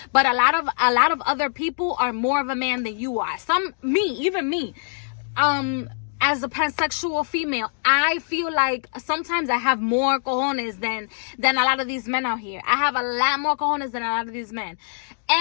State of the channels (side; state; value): right; silent; digital silence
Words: but a lot of other people are more of a man than you are. Even me. As a pansexual female, I feel like sometimes I have more cojones than a lot of these men out here. I have a lot more cojones than a lot of these men.